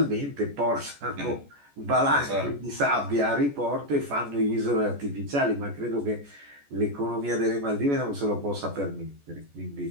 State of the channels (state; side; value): late; left; 14 ms